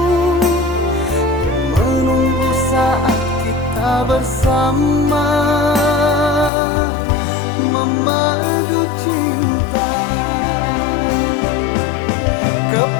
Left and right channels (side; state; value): right; drops out; at 6.5 s